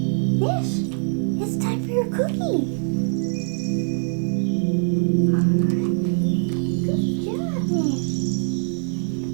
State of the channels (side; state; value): left; silent; 61 dB below the other